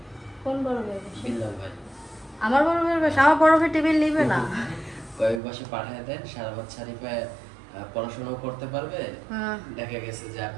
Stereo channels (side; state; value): left; drops out; at 5.4 s